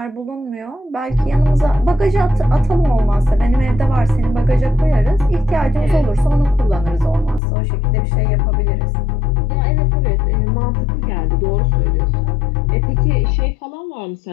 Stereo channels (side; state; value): right; drops out; at 7.4 s